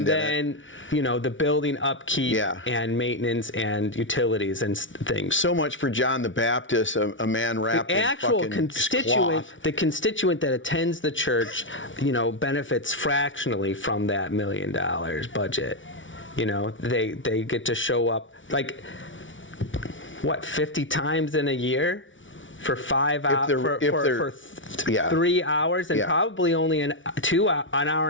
in it. And then, the building upkeep and maintenance and utilities and things. So much for John the Baptist, a man wrapped the in actual fucking constituent, cloth. the constituent that attends the church, benefits fractionally from that $1 million budget. They get to show up 50 times in a year? For 5 hours, for 3 hours, and probably only an hour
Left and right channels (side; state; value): right; late; 0.56 ms